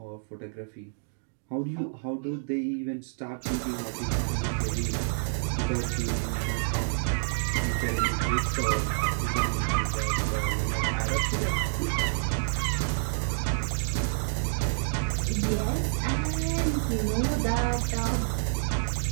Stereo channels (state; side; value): silent; left; digital silence